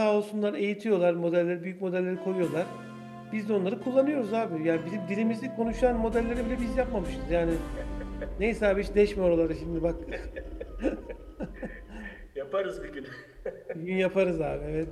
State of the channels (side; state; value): both; identical; correlation 1.00